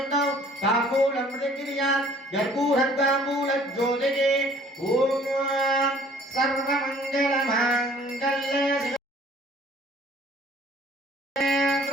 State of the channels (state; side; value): normal; both; correlation 0.55